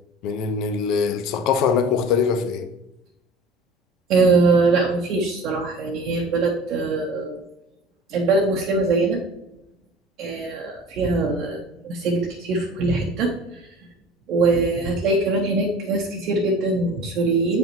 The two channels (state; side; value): normal; both; correlation 0.41